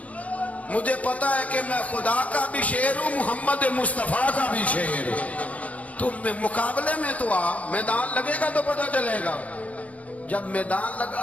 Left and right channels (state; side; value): late; right; 0.068 ms